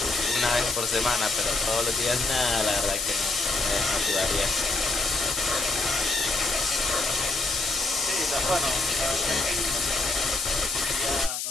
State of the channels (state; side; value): noise; left; hiss, 3 dB below the sound